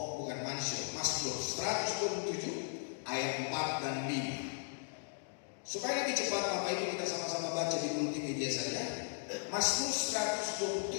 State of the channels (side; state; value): right; silent; digital silence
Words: bukan Mazmur 127 ayat 4 dan 5. Supaya lebih cepat Bapak Ibu kita sama-sama baca di multimedia saja. Mazmur